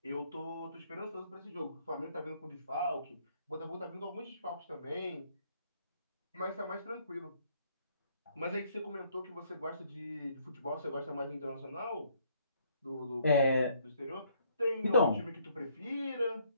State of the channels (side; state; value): both; inverted; correlation -0.66